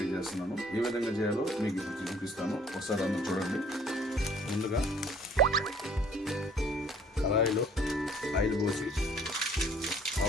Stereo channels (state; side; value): normal; both; correlation 0.57